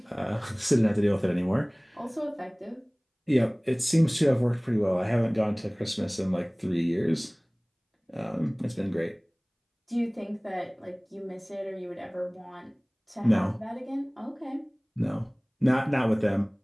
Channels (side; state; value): both; identical; correlation 1.00